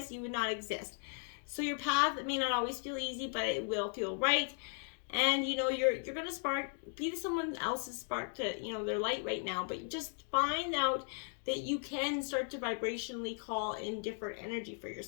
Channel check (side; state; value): right; silent; 53 dB below the other